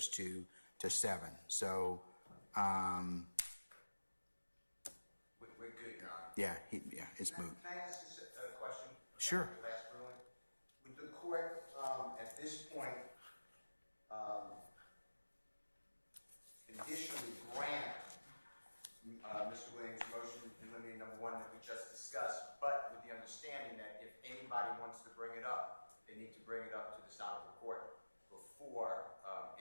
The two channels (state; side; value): inverted; both; correlation -1.00